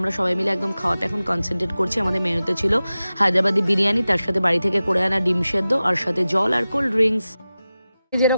সবাই মিলে একদম খাওয়াতে এখন কনসেন্ট্রেট করছি। আমাদের মেনুতে ছিল হায়দ্রাবাদি বিরিয়ানি, তার সাথে বাড়ি থেকে করে আনা ডিম সেদ্ধ, আর সাথে জল আর কোল্ড ড্রিঙ্কস।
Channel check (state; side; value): inverted; both; correlation -0.95